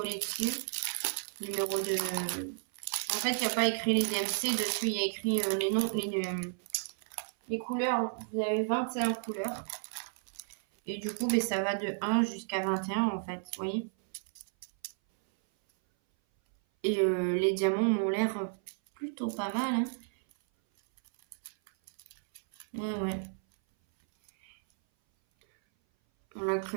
dessus. Numéro de... En fait, il n'y a pas écrit les DMC. Dessus, il y a écrit les noms, les couleurs. Vous avez 21 couleurs. Et du coup, ben, ça va de 1 jusqu'à 21 en fait. Vous voyez. Et les diamants m'ont l'air plutôt pas mal. Hein. Ouais, ouais. Voilà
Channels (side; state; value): left; silent; 56 dB below the other